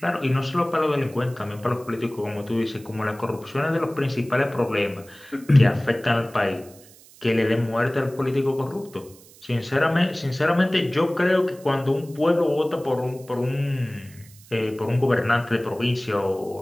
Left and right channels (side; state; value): right; noise; hiss, 23 dB below the sound